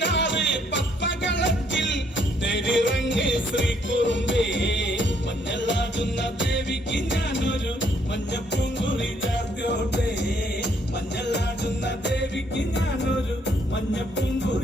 പത്മകളത്തിൽ തെരിറങ്ങ് ശ്രീകുറുമ്പേ. മഞ്ഞളാടുന്ന ദേവിക്ക് ഞാനൊരു മഞ്ഞപ്പൂങ്കുറി ചാർത്തിയോട്ടെ. മഞ്ഞളാടുന്ന ദേവിക്ക് ഞാനൊരു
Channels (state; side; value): normal; both; correlation 0.69